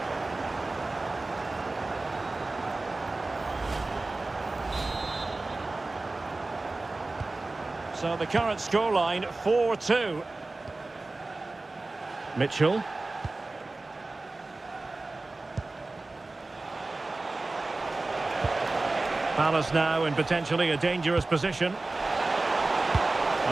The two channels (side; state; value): left; quieter; 3.2 dB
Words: So the current scoreline, 4-2. Mitchell. Palace now in potentially a dangerous position.